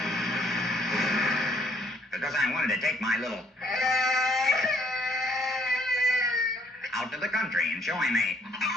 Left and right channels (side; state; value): both; normal; correlation 0.64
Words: Because I wanted to take my little... out to the country and show him a...